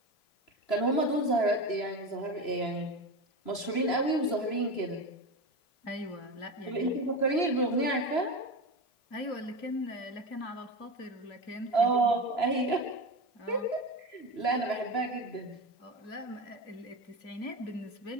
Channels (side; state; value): right; late; 3.0 ms